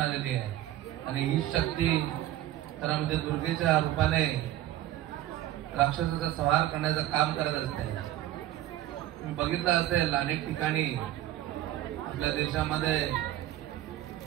आहे. आणि ही शक्ती तर म्हणजे दुर्गेच्या रूपाने राक्षसाचा संहार करण्याचं काम करत असते. तुम्ही बघितलं असेल अनेक ठिकाणी आपल्या देशामध्ये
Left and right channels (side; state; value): left; quieter; 13.9 dB